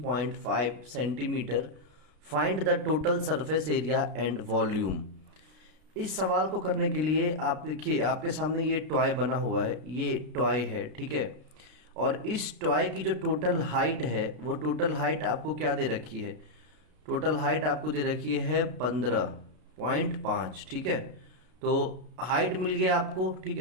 centimetre. Find the total surface area and volume. इस सवाल को करने के लिए आप देखिए आपके सामने ये टॉय बना हुआ है, ये टॉय है, ठीक है. और इस टॉय की जो टोटल हाइट है वो टोटल हाइट आपको क्या दे रखी है? टोटल हाइट आपको दे रखी है 15.5, ठीक है. तो हाइट मिल गया आपको, ठीक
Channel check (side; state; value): left; late; 32 ms